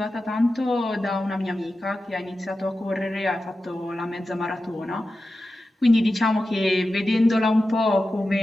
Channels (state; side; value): normal; both; correlation 0.92